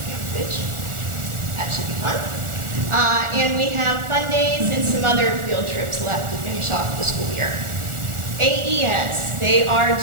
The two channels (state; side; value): late; left; 1.4 ms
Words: Camp Fitch. That should be fun. And we have fun days and some other field trips left to finish off the school year. AES, they are